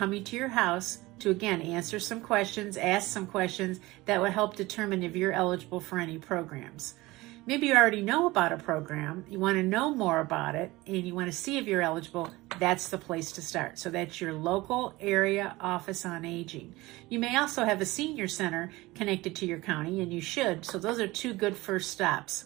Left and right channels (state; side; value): quieter; left; 20.2 dB